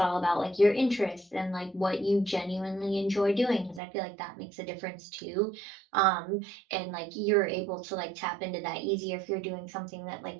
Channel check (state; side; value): drops out; left; at 3.8 s